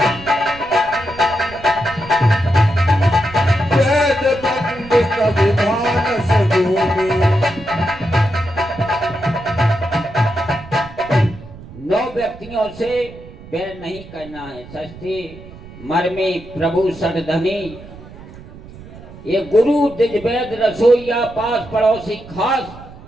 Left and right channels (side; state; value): right; noise; rumble, 17 dB below the sound